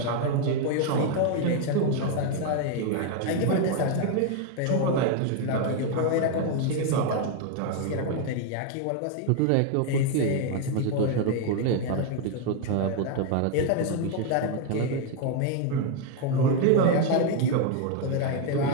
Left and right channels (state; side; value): different; both; correlation 0.01